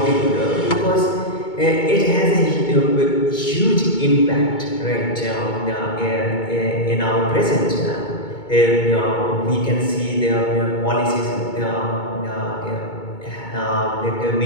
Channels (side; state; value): right; late; 2.2 ms